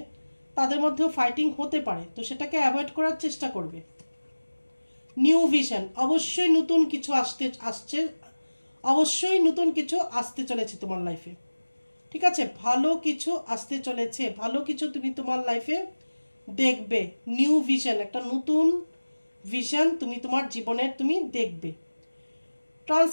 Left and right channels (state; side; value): inverted; both; correlation -1.00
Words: তাদের মধ্যেও ফাইটিং হতে পারে, তো সেটাকে অ্যাভয়েড করার চেষ্টা করবে। নিউ ভিশন, অবশ্যই নতুন কিছু আসছে, অবশ্যই নতুন কিছু আসতে চলেছে তোমার লাইফে, ঠিক আছে? ভালো কিছু আসতে চলেছে, ভালো কিছু তুমি তোমার লাইফে দেখবে। নিউ ভিশন, একটা নতুন ভিশন তুমি তোমার জীবনের তুমি দেখবে।